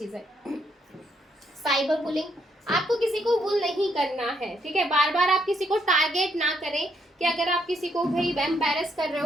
साइबर बुलिंग, आपको किसी को बुल नहीं करना है, ठीक है। बार बार आप किसी को टारगेट ना करें कि अगर आप किसी को भाई एम्बैरेस कर रहे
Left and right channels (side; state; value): both; normal; correlation 0.74